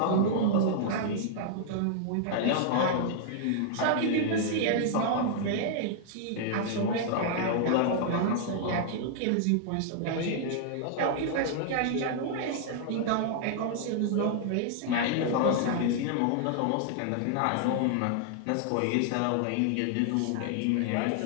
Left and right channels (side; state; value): both; different; correlation -0.01